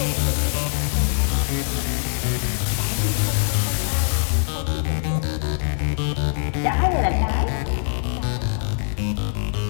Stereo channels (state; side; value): silent; right; 64 dB below the other